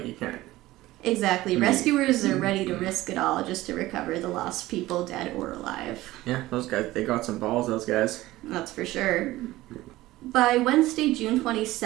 you can't... Exactly. Rescuers are ready to risk it all just to recover the lost people, dead or alive. Yeah, those guys, they got some balls, those guys. That's for sure. By Wednesday, June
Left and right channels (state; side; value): quieter; left; 17.3 dB